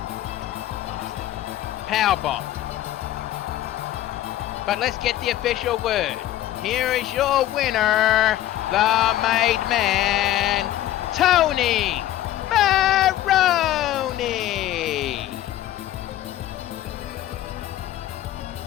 Powerbomb. But let's get the official word. Here is your winner, the made man, Tony Maroney.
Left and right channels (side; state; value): right; quieter; 13.5 dB